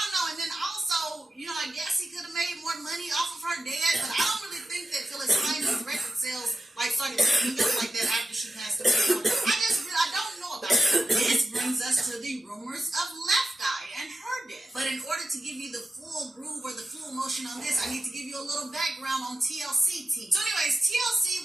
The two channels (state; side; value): normal; both; correlation 0.91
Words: know. And then also, I guess he could have made more money off of her dad, but I don't really think that Phyllis Hyman's record sales started picking up like that after she passed away. So I don't know about that. This brings us to the rumors of Left Eye and her death. But in order to give you the full groove or the full emotion on this, I need to give you a little background on TLC team. So anyways,